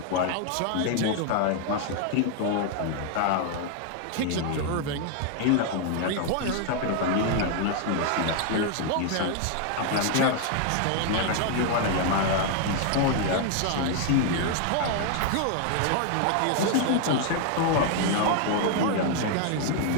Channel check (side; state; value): both; different; correlation 0.00